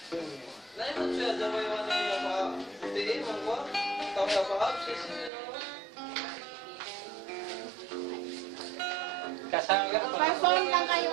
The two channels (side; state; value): left; drops out; at 5.3 s